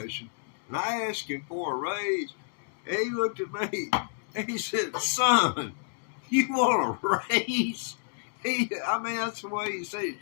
and I asked him for a raise. And he looked at me, and he said, "Son, you want a raise?" That's the way he said it.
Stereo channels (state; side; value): silent; right; digital silence